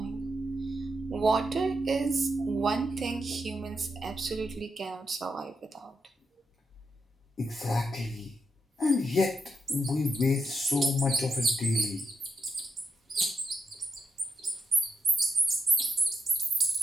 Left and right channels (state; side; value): normal; both; correlation 0.83